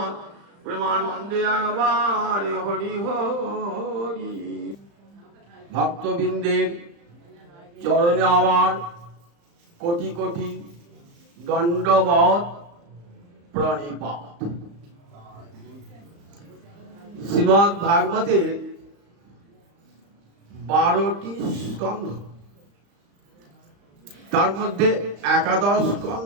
প্রেমানন্দে একবারে হরি হরি। ভক্তবৃন্দের চরণে আমার কোটি কোটি দণ্ডবৎ প্রণিপাত। শ্রীমদ্ ভাগবতের 12টি স্কন্ধ, তার মধ্যে একাদশ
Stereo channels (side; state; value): left; late; 35 ms